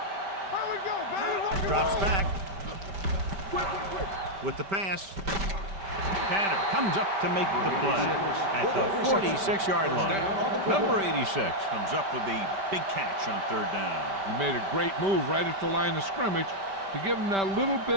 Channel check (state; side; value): late; left; 5.1 ms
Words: Here we go, baby. Drops back. With the pass. Tanner comes up to make the play at the 46-yard line. Number 86 comes up with the big catch on 3rd down. He made a great move right at the line of scrimmage to give him that little